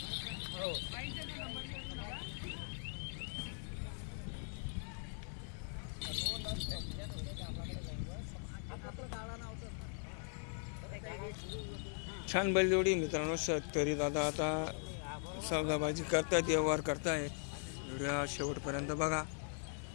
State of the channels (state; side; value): silent; right; 51 dB below the other